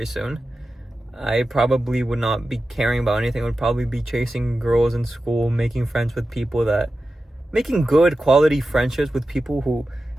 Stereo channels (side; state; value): both; normal; correlation 0.93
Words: soon. I probably would not be caring about anything. I would probably be chasing girls in school, making good quality friendships with people who